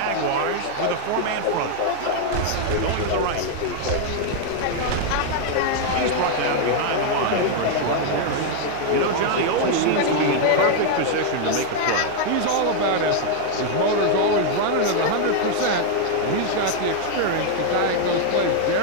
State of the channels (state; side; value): different; both; correlation 0.00